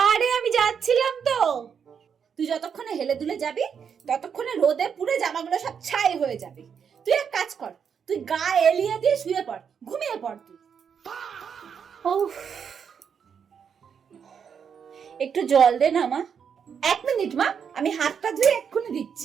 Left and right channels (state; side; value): quieter; left; 7.1 dB